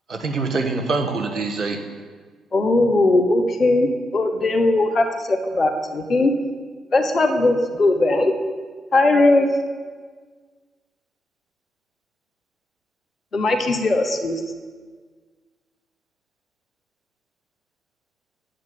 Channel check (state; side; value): normal; both; correlation 0.86